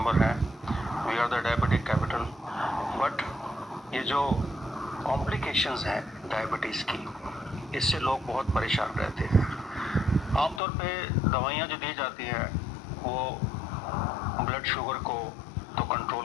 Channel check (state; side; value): drops out; right; at 10.6 s